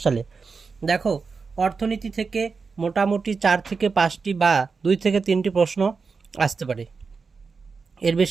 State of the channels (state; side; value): quieter; left; 4.9 dB